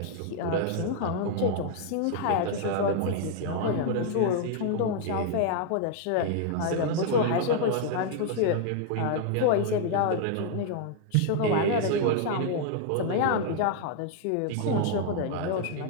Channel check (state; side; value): different; both; correlation 0.00